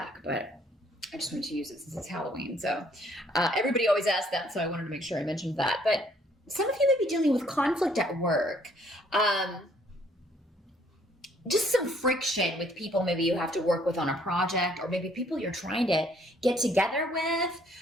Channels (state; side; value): normal; both; correlation 0.63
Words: but I just wanted to use it since it's Halloween. So everybody always asks that, so I wanted to make sure I mentioned that. But some of you may be dealing with conflict at work. Just some friction with people maybe you have to work with on a project, or maybe people you're trying to get together with,